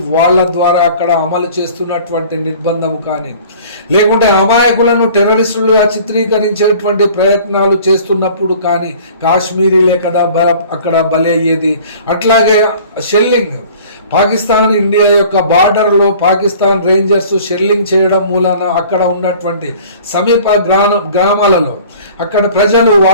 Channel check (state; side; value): inverted; both; correlation -0.48